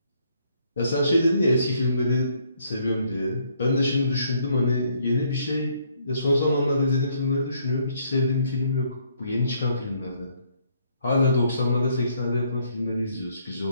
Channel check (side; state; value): both; inverted; correlation -0.69